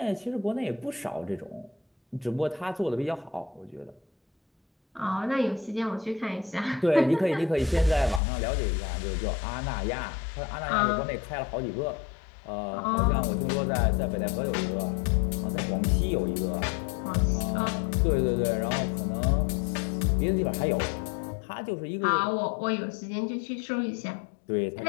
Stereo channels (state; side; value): drops out; right; at 8.2 s